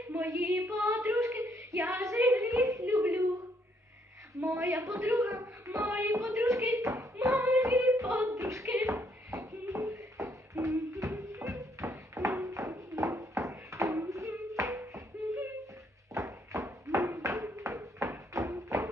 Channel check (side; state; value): both; normal; correlation 0.71